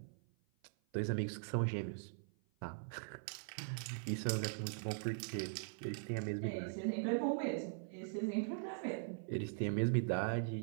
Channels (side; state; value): left; silent; 50 dB below the other